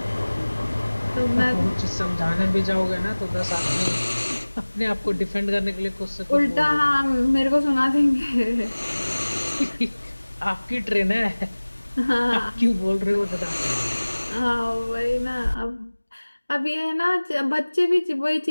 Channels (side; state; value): both; inverted; correlation -1.00